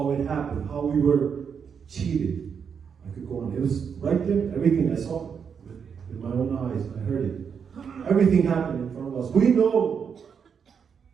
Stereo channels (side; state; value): left; quieter; 6.8 dB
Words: it happened, how we were cheated. I could go on. It was right there, everything. I saw it with my own eyes. I heard it. Everything happened in front of us. We know